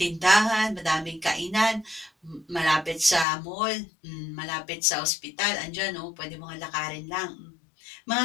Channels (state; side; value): drops out; right; at 3.2 s